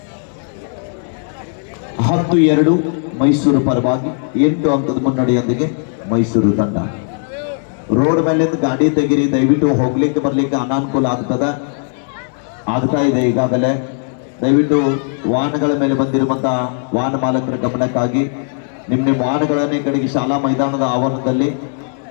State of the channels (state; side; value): silent; right; 60 dB below the other